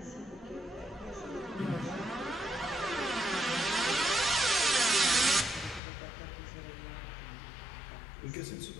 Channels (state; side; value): drops out; right; at 5.8 s